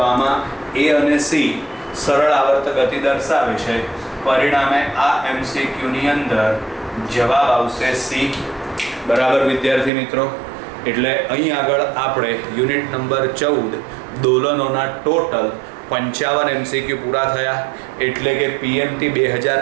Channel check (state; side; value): drops out; left; at 9.9 s